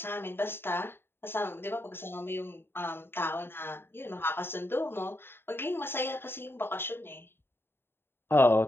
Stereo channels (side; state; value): right; late; 0.11 ms